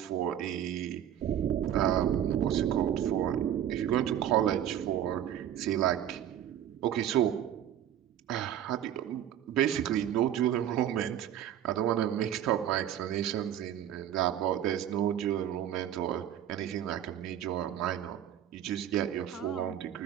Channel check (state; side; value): quieter; left; 10.6 dB